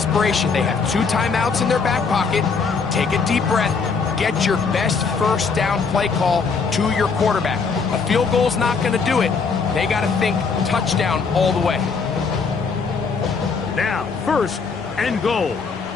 They have 2 timeouts in their back pocket. Take a deep breath. Get your best first down play call to your quarterback. A field goal's not going to do it. They got to think touchdown all the way. Now, first and goal.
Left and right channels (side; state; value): right; quieter; 5.1 dB